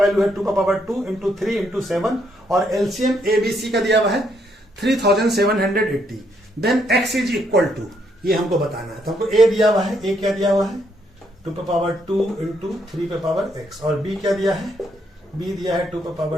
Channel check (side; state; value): both; normal; correlation 0.74